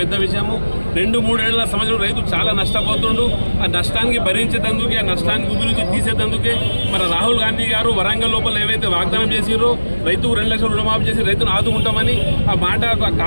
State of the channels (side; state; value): both; inverted; correlation -1.00